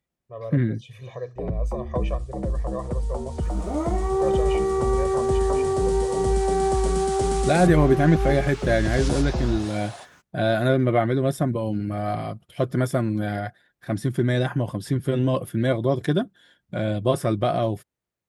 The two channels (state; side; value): identical; both; correlation 1.00